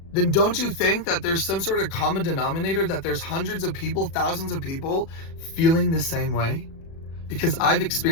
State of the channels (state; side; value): late; right; 36 ms